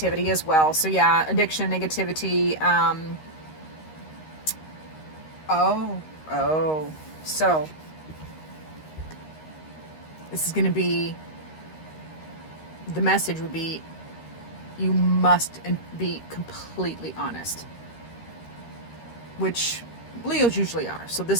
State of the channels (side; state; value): right; late; 13 ms